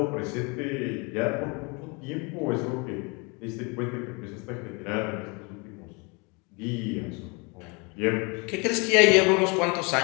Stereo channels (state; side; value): quieter; right; 30.4 dB